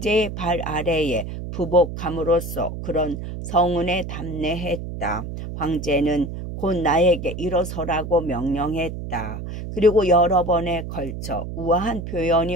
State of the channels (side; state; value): right; noise; hum, 7 dB below the sound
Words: 발 아래에 부복함으로써 그런 성은에 담례했다. 황제는 곧 나에게 일어서라고 명령했다. 그리고 여러 번에 걸쳐 우아한 표현이